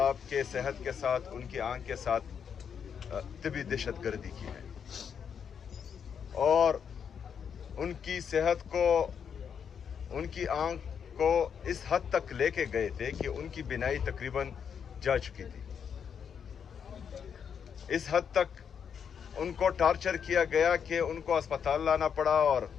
के सेहत के साथ, उनकी आंख के साथ तिबी दहशतगर्दी की है और उनकी सेहत को, उनकी आंख को इस हद तक लेके गए थे कि उनकी बिनाई तकरीबन जा चुकी थी। इस हद तक उनको टॉर्चर किया गया कि उनको अस्पताल लाना पड़ा और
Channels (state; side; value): quieter; right; 7.4 dB